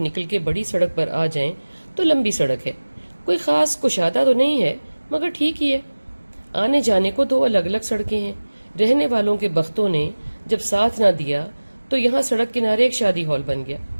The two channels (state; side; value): inverted; both; correlation -1.00